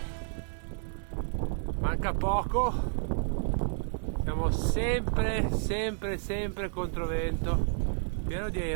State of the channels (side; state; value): left; silent; 57 dB below the other